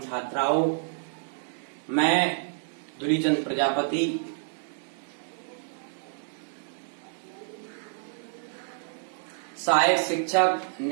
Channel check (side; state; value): left; silent; digital silence